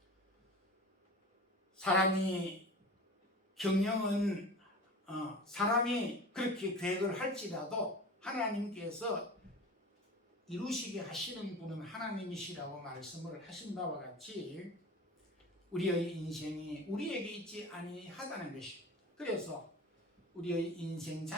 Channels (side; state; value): both; normal; correlation 0.35